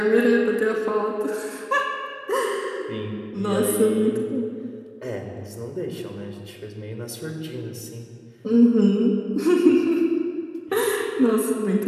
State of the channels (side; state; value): both; identical; correlation 1.00